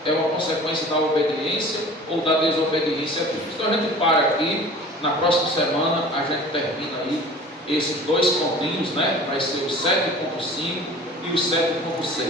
é uma consequência da obediência ou da desobediência a Deus. Então a gente para aqui, na próxima semana a gente termina aí esses dois pontinhos, vai ser o 7.5 e o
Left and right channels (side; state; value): both; normal; correlation 0.43